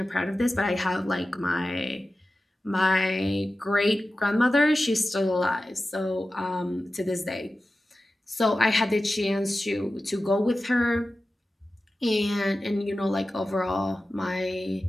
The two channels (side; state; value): both; normal; correlation 0.94